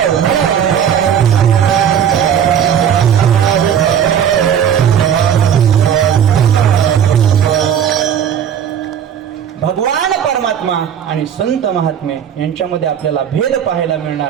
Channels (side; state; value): left; quieter; 8.8 dB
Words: भगवान परमात्मा आणि संत महात्मे यांच्यामध्ये आपल्याला भेद पाहायला